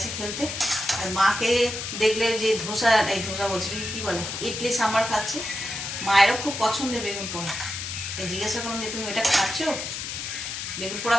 খেলতে। আর মাকে দেখলে যে ধোসা বলছে কি বলে, ইডলি সাম্বার খাচ্ছে। মায়েরও খুব পছন্দের বেগুন পোড়া। তাই জিজ্ঞাসা করলাম যে তুমি ওইটা খাচ্ছ, বেগুন পোড়া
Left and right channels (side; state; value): left; noise; hiss, 5 dB below the sound